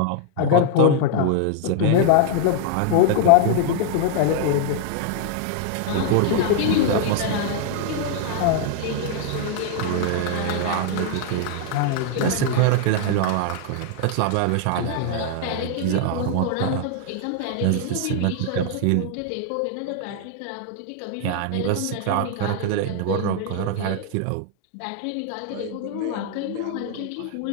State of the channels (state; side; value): different; both; correlation 0.00